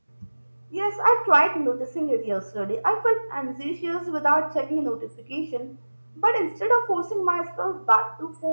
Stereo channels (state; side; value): inverted; both; correlation -1.00